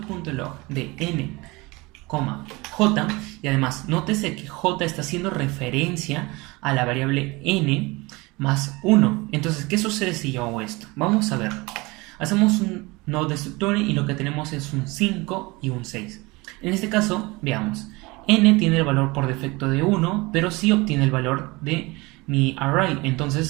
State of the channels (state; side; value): quieter; left; 23.8 dB